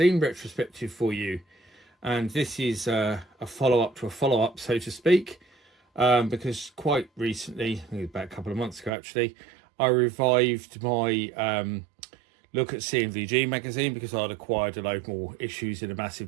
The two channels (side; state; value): left; drops out; at 8.9 s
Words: retrospective for you, and this is a follow-up to a follow-up, so to speak, because quite recently, about a couple of months ago actually, I revived my look at C&VG magazine because I'd acquired a load more issues in a